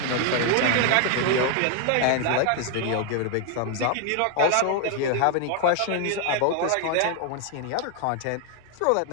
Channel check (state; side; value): different; both; correlation 0.00